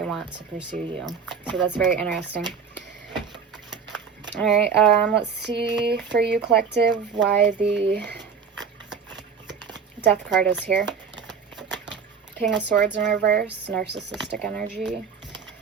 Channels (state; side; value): quieter; left; 6.2 dB